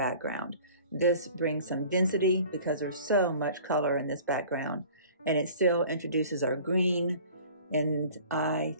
This brings some density because there's so much color in this background, and it still introduces our green, and I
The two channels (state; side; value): inverted; both; correlation -0.47